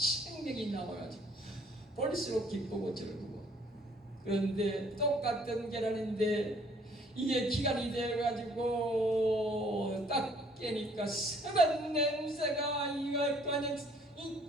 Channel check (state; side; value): normal; both; correlation 0.60